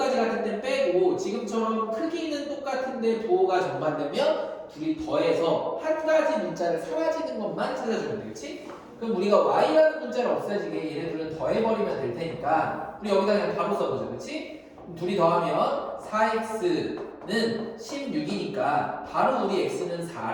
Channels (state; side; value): identical; both; correlation 1.00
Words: 같은 데는 빼고 지금처럼 크기는 똑같은데 부호가 정반되면 둘이 더해서 한 가지 문자를 사라지는 것만 찾아주면 되겠지? 그럼 우리가 y라는 문자를 없애지게 얘네들은 더해버리면 될 테니까 우리 여기다 그냥 바로 써보자, 그렇지? 둘이 더하면 4x는 16이니까 바로 우리 x는